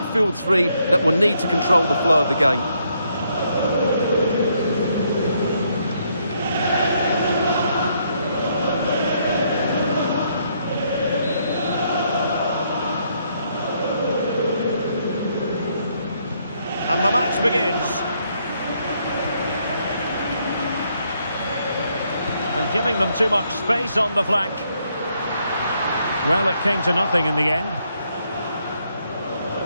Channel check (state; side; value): inverted; both; correlation -0.73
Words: three that will need to control the flow of the game. And the match begins. And giving them too much space on the flank. Well, it came to nothing in the end.